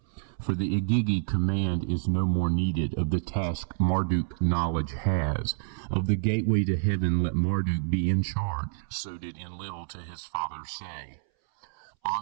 For the Igigi command is no more needed. Of the task Marduk knowledge has. Of the gateway to heaven let Marduk be in charge. So did Enlil to his father say.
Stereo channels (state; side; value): silent; left; 59 dB below the other